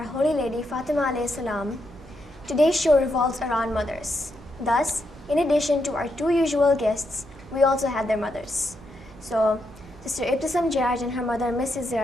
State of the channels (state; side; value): noise; right; hum, 24 dB below the sound